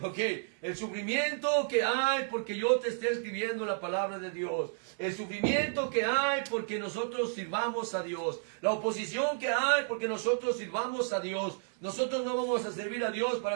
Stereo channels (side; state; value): left; silent; 56 dB below the other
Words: Ok, el sufrimiento que hay porque yo te esté escribiendo la palabra de Dios, el sufrimiento que hay porque nosotros sirvamos a Dios, la oposición que hay porque nosotros sirvamos a Dios. Nosotros no vamos a servir a Dios